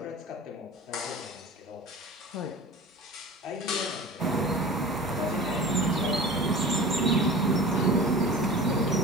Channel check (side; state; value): both; normal; correlation 0.37